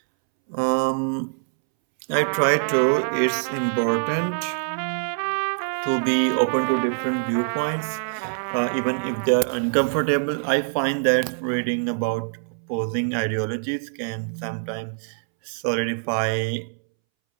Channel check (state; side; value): silent; left; 63 dB below the other